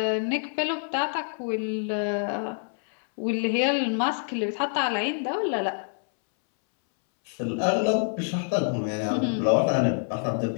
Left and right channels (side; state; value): right; silent; 61 dB below the other